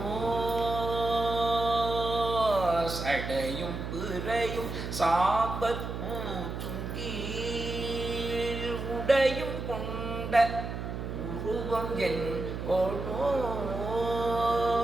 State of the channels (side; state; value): right; noise; hum, 6 dB below the sound